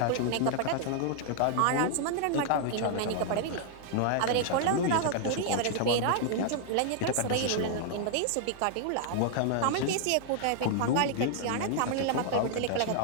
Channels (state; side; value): different; both; correlation -0.01